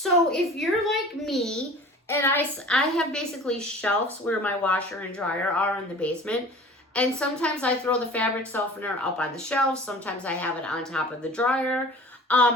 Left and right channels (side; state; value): both; normal; correlation 0.43